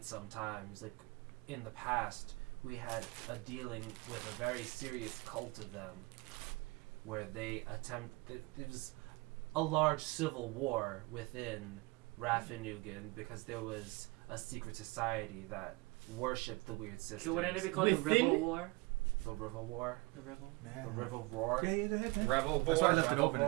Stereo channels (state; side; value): quieter; left; 25.0 dB